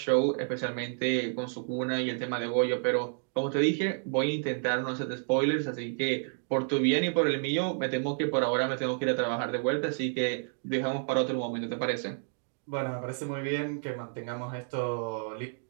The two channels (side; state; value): left; silent; digital silence